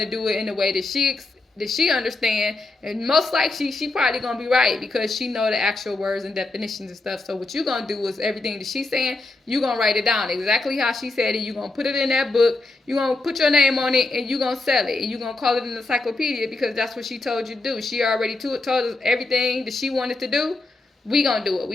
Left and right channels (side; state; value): right; quieter; 3.2 dB